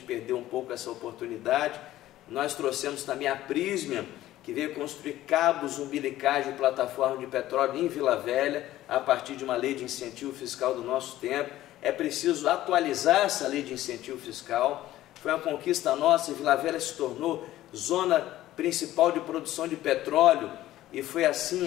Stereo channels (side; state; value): right; quieter; 14.6 dB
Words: perdeu um pouco essa oportunidade. Nós trouxemos também a Prysmian, que veio construir cabos umbilicais de plataforma de petróleo em Vila Velha, a partir de uma lei de incentivo fiscal do nosso tempo. É preciso atualizar essa lei de incentivo fiscal. Foi uma conquista nossa, e Vila Velha se tornou zona principal de produção de petróleo, e foi